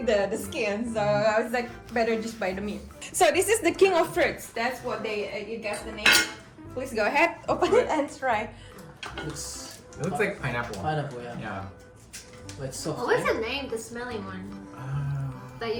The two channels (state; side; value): identical; both; correlation 1.00